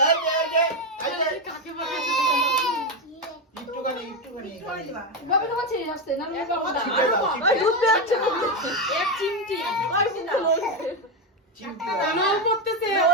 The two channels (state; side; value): normal; both; correlation 0.09